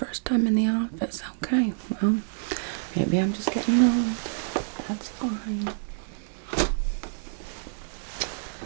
time in the office. Okay, well, maybe I'm just getting old. That's fine. Let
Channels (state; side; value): silent; left; digital silence